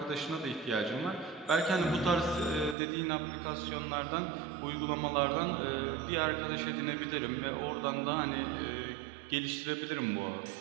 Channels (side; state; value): left; drops out; at 2.8 s